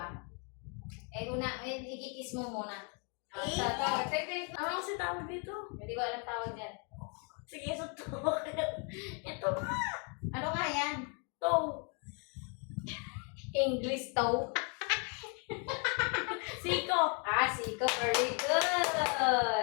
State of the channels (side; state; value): right; quieter; 37.6 dB